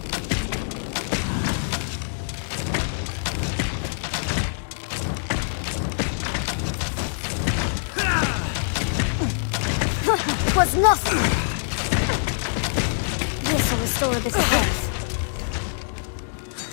It was nothing! This will restore a bit of health.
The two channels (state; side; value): silent; right; digital silence